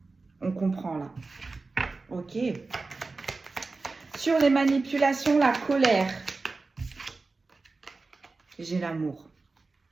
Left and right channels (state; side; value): quieter; left; 3.8 dB